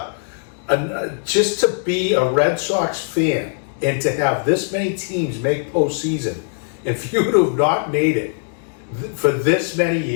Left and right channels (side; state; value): right; silent; digital silence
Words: just to be a Red Sox fan and to have this many teams make postseason, and for you to have not made it for this many